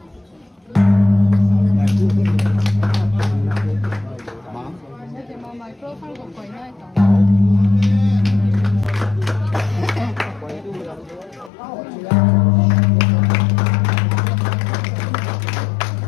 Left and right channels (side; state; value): right; drops out; at 11.5 s